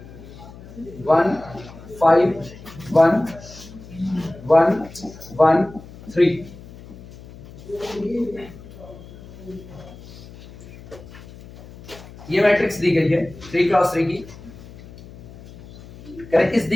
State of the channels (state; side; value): noise; left; hum, 18 dB below the sound